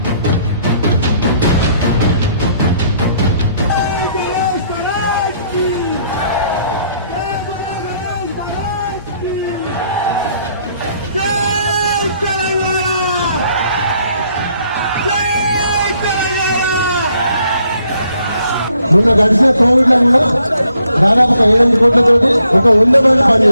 మొన్న గడిచిన కోవిడ్ లో కూడా దాదాపు 7 కోట్లతోటి ఒక 100 మంది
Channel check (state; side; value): inverted; both; correlation -0.69